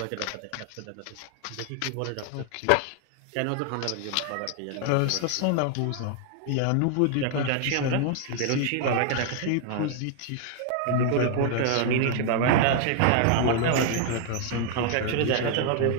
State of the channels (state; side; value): different; both; correlation 0.00